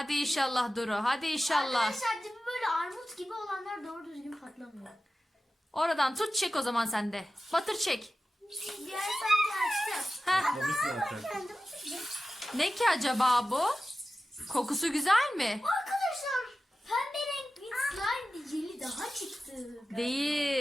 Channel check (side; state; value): both; normal; correlation 0.94